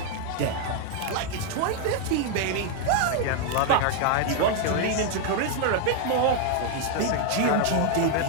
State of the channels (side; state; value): both; different; correlation 0.00